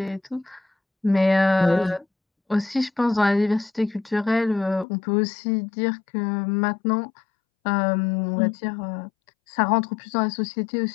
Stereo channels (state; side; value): drops out; right; at 4.9 s